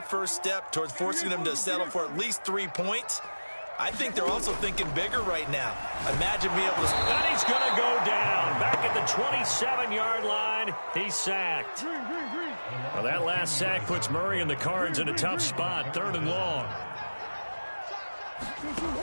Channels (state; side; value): inverted; both; correlation -1.00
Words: first step towards forcing them to settle for at least 3 points? I think they're also thinking bigger right now. Imagine being able to... And he's going to go down. Back at the 27-yard line, he's sacked. Well, that last sack puts Murray and the Cards in a tough spot, 3rd and long.